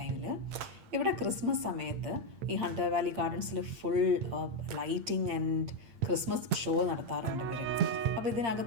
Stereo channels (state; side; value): late; left; 8.7 ms